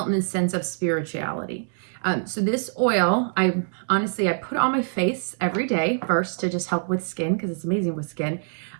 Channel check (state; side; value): silent; left; digital silence